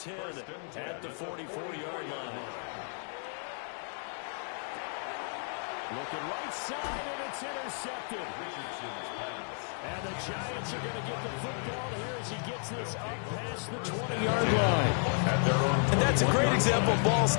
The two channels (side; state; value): right; silent; 56 dB below the other